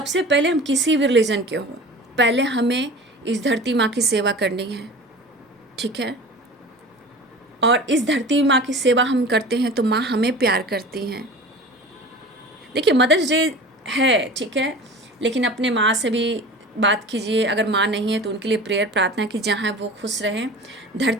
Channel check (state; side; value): normal; both; correlation 0.37